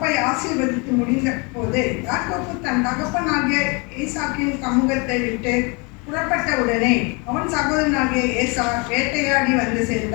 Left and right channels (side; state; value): right; quieter; 30.5 dB